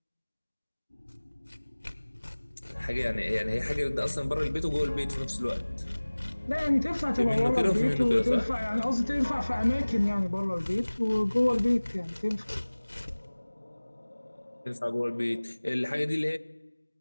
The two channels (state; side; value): inverted; both; correlation -1.00